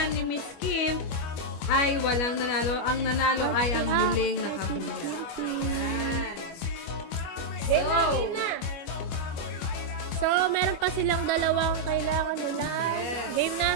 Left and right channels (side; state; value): right; late; 25 ms